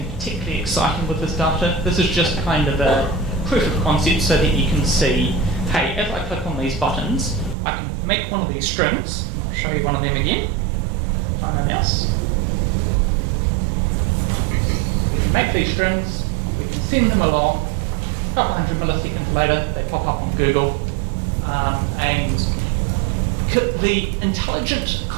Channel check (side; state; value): left; drops out; at 7.6 s